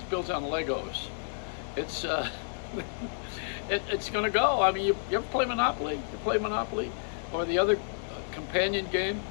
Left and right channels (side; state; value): right; silent; digital silence